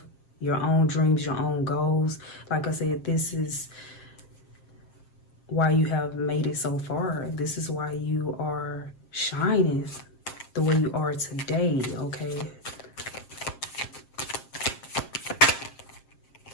your own dreams, your own goals. Like I said, this is why you have made it so far. This is why you are shining the way you are today, okay?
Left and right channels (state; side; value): late; right; 7.5 ms